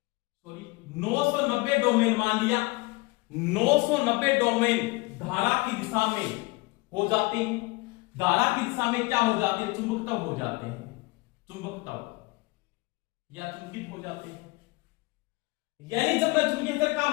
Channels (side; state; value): right; quieter; 24.3 dB